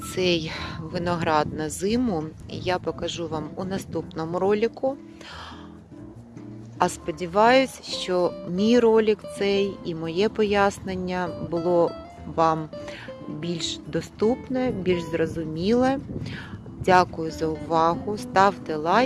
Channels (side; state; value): both; identical; correlation 1.00